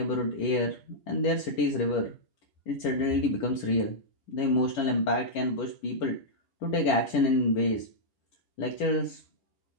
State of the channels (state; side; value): late; right; 10 ms